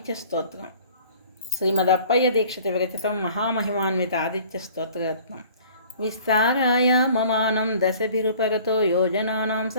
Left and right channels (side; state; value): both; inverted; correlation -0.50